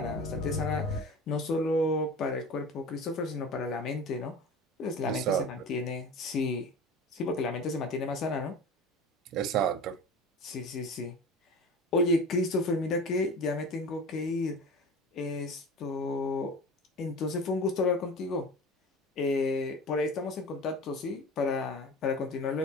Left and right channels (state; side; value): normal; both; correlation 0.35